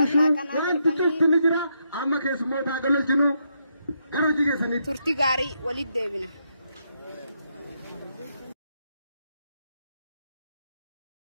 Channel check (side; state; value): both; inverted; correlation -0.79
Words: wanti cufti ni jira amma keessummoota gololchinu gara hojii keessanitti turtii gaarii walitti deebina.